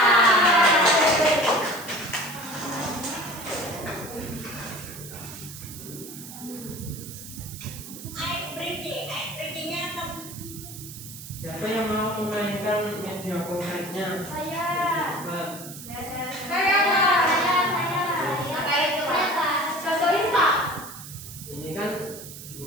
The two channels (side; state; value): right; noise; hiss, 13 dB below the sound